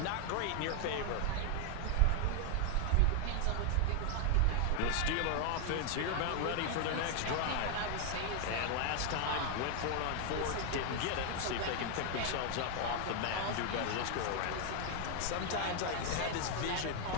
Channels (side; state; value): both; different; correlation 0.00